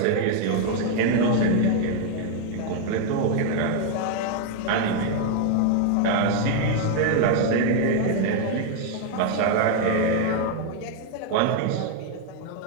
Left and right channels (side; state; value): both; different; correlation 0.00